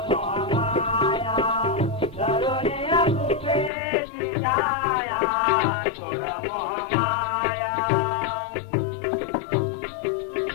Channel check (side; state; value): right; drops out; at 3.7 s